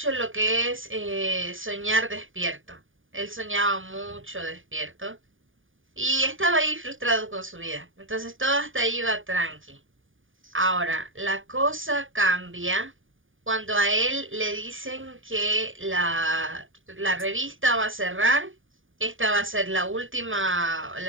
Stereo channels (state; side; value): late; left; 0.58 ms